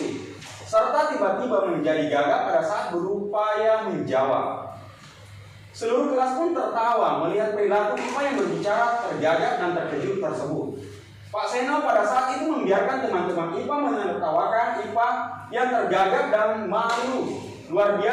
serta tiba-tiba menjadi gagap pada saat berupaya menjawab. Seluruh kelas pun tertawa melihat perilaku IPA yang berbicara tergagap dan terkejut tersebut. Pak Seno pada saat itu membiarkan teman-teman IPA menertawakan IPA yang tergagap dan malu luar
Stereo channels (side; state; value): both; identical; correlation 1.00